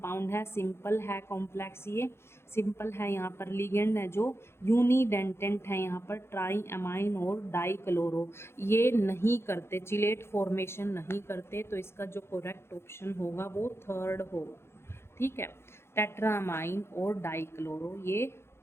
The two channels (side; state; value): right; late; 0.12 ms